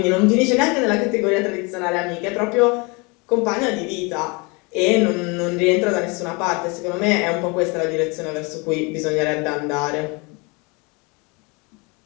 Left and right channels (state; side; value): quieter; right; 28.7 dB